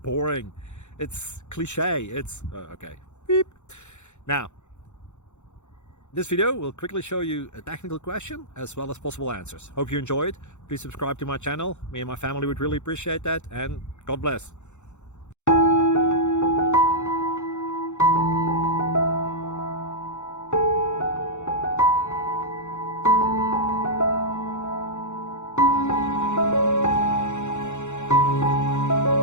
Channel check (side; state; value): right; late; 0.83 ms